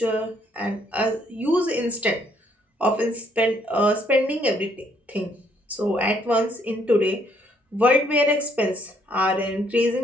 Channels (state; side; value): normal; both; correlation 0.68